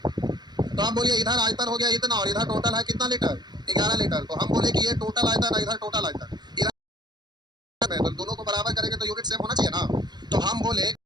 तो आप बोलिए इधर आयतन हो गया इतना, और इधर टोटल है कितना लीटर? 11 लीटर। तो हम बोले कि ये टोटल आयतन है, इधर टोटल आयतन, इधर तो दोनों को बराबर करेंगे तो यूनिट सेम होना चाहिए ना। तो हम बोले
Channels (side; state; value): left; late; 0.21 ms